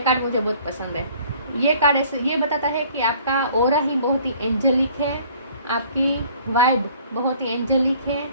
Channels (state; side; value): inverted; both; correlation -0.54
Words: मुझे बहुत पसंद है। ये कार्ड ऐसे ये बताता है कि आपका ऑरा ही बहुत ही एंजेलिक है, आपकी वाइब बहुत ही एंजेलिक है।